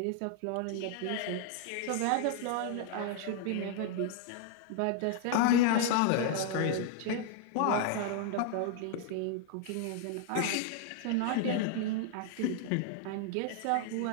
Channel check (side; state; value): both; different; correlation 0.00